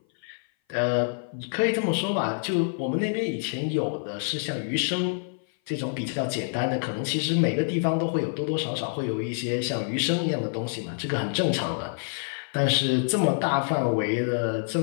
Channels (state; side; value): silent; right; 57 dB below the other